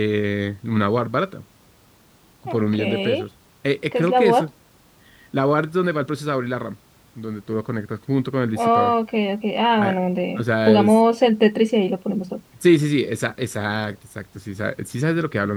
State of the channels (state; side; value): identical; both; correlation 1.00